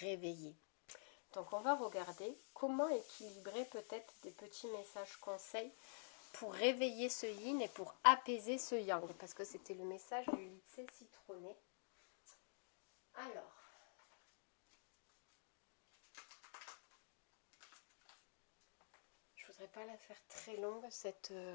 Donc on va regarder comment équilibrer peut-être des petits messages conseils pour réveiller ce yin et pour apaiser ce yang, parce que c'était le message du lycée citronné. Alors, je voudrais pas la faire très longue cette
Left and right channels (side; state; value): right; silent; digital silence